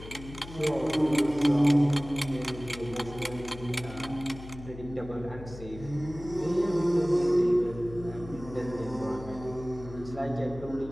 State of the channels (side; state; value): left; noise; hum, 14 dB below the sound